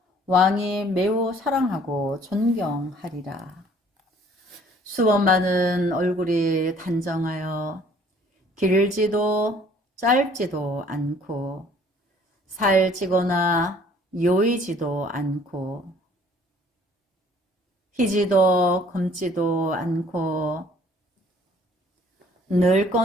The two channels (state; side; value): normal; both; correlation 0.57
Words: 왕이 매우 사랑하고 존경하리라. 수범마는 얼굴이 단정하여 길지도 짧지도 않고 살찌거나 요이지도 않고 희지도 검지도 않고